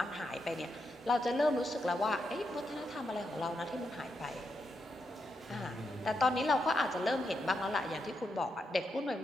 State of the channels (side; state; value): both; normal; correlation 0.83